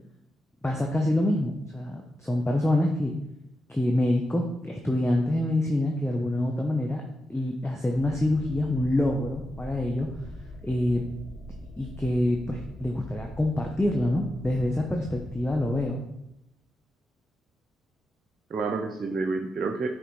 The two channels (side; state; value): both; normal; correlation 0.89